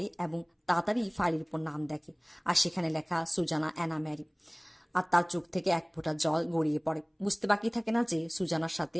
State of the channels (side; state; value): both; identical; correlation 1.00